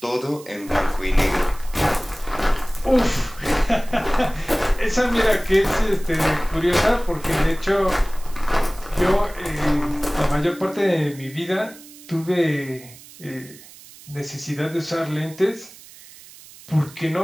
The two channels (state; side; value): noise; right; hiss, 20 dB below the sound